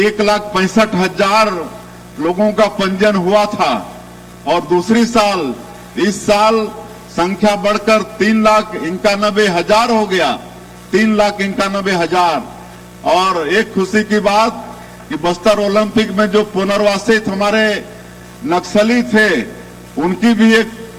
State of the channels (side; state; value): both; identical; correlation 1.00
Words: लोगों का पंजीयन हुआ था और दूसरी साल इस साल संख्या बढ़कर 3,91,000 हो गया, 3,91,000। और एक खुशी की बात कि बस्तर ओलंपिक में जो पुनर्वासित हमारे नक्सली थे उनकी भी एक